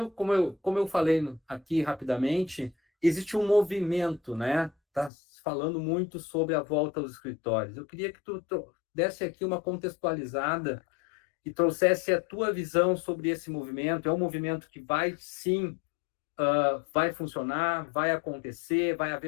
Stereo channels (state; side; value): drops out; right; at 5.1 s